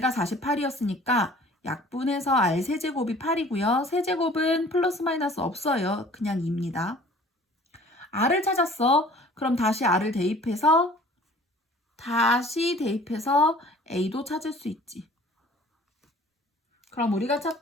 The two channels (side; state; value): both; normal; correlation 0.50